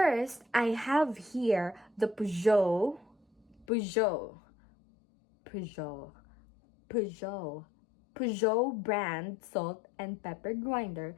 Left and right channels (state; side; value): drops out; right; at 3.7 s